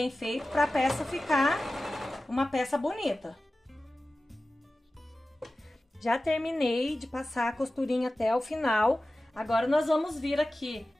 feito, para a peça ficar uma peça bonita. Já terminei de passar a costurinha até o final. Agora, nós vamos vir aqui,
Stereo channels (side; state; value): both; normal; correlation 0.95